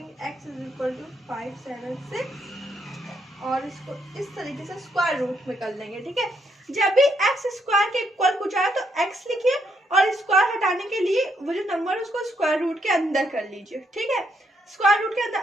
x इज इक्वल टू 576 और इसको इस तरीके से स्क्वायर रूट में कर लेंगे, ठीक है। जब भी x स्क्वायर के इक्वल कुछ आए तो x लिखिए और स्क्वायर हटाने के लिए वो जो नंबर है उसको स्क्वायर रूट के अंदर कर लीजिए, ठीक है। स्क्वायर रूट के अंदर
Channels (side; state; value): both; normal; correlation 0.75